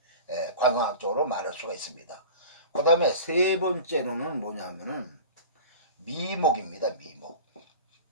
관광학적으로 말할 수가 있습니다. 그 다음에 세 번째로는 뭐냐면은 미목입니다.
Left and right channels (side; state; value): both; inverted; correlation -0.35